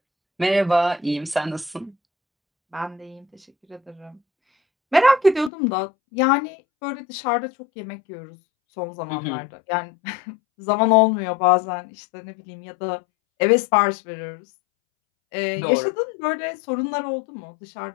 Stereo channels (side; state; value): right; drops out; at 5.5 s